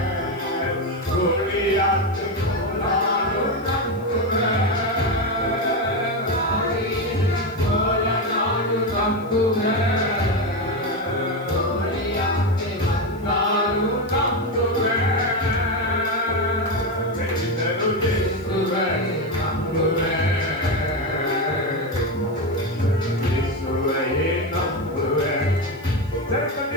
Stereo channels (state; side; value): noise; left; hiss, 29 dB below the sound